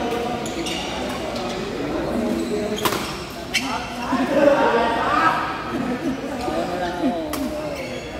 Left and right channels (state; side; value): identical; both; correlation 1.00